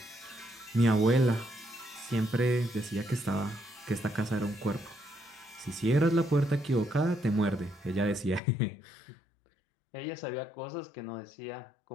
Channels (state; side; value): drops out; right; at 8.4 s